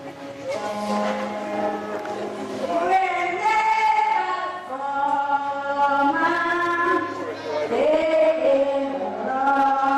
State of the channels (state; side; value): identical; both; correlation 1.00